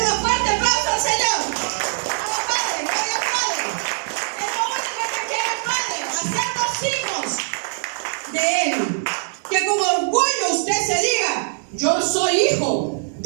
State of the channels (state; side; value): silent; left; 64 dB below the other